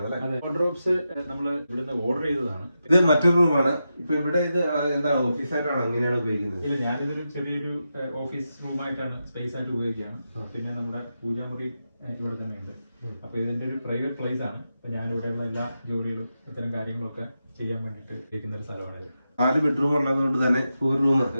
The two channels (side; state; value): both; inverted; correlation -0.88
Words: അല്ലെ? വാർഡ്രോബ്സ് നമ്മൾ ഇവിടുന്ന് ഓർഡർ ചെയ്തതാണ്. ഇത് മറ്റൊരു റൂമാണ്. ഇപ്പൊ ഇവിടെ ഇത് എന്താ ഓഫീസായിട്ടാണോ എങ്ങനെയാണ് ഉപയോഗിക്കുന്നത്? ഇല്ല, ഞാനിതൊരു ചെറിയൊരു ഓഫീസ് റൂമായിട്ടാണ് സ്പേസ് ആയിട്ട് ഉപയോഗിക്കുകയാണ്. പിന്നെ നമ്മുടെ പൂജാമുറി ഇവിടെ തന്നെയുണ്ട്. അപ്പൊ ഇതിന്റെ ഒരു പ്രൈവറ്റ് പ്ലേസ് ആണ്. ഞാൻ ഇവിടെയുള്ള എല്ലാ ജോലികളും ഇത്തരം കാര്യങ്ങളൊക്കെ ചെയ്യാൻ വേണ്ടിയിട്ട് ഉപയോഗിക്കുന്ന ഒരു സ്ഥലമാണിത്. 4 ബെഡ്റൂം ഉള്ളതുകൊണ്ട് തന്നെ ഒരു റൂം